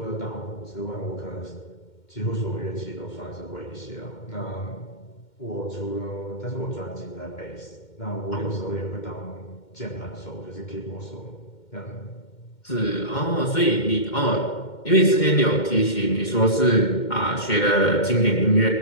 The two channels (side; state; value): right; late; 2.1 ms